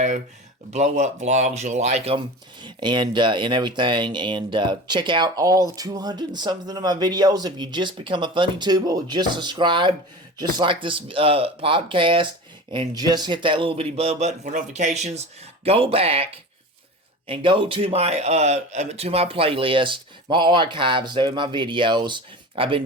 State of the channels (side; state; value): both; normal; correlation 0.33